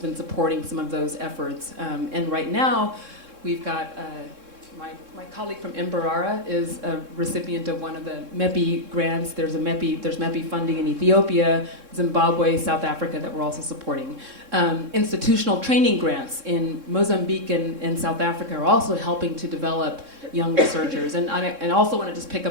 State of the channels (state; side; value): late; left; 3.6 ms